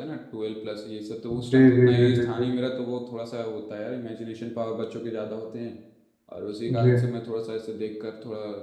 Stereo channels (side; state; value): both; identical; correlation 1.00